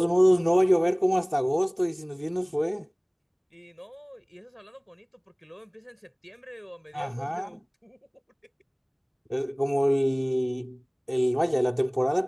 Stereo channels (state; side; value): identical; both; correlation 1.00